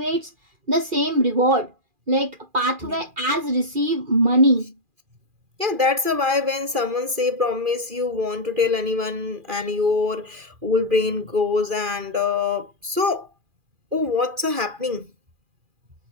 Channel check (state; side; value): late; left; 2.4 ms